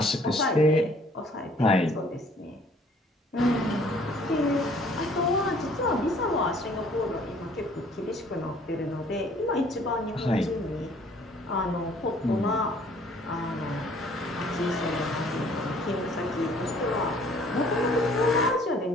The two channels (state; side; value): normal; both; correlation 0.57